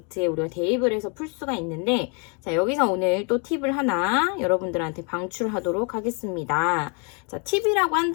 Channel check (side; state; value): right; quieter; 34.8 dB